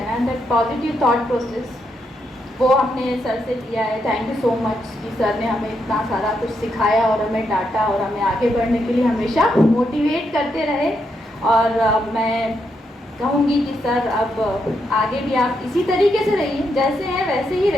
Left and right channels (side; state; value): both; normal; correlation 0.81